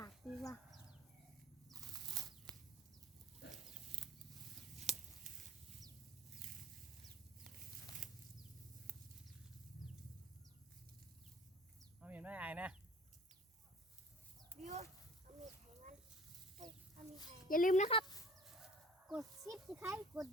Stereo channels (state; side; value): normal; both; correlation 0.47